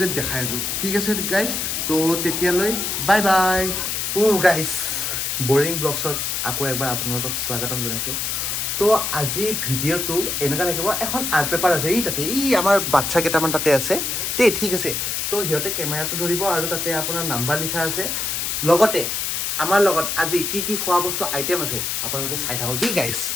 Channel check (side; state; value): left; noise; hiss, 1 dB below the sound